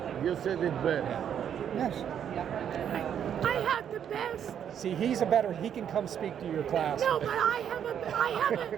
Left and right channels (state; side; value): quieter; left; 8.9 dB